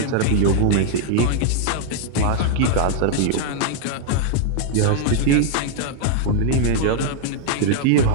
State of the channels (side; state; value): both; different; correlation 0.00